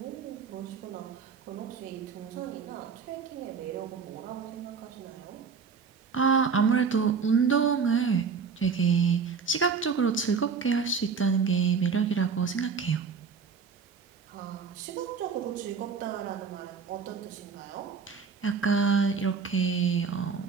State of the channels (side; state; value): left; quieter; 5.7 dB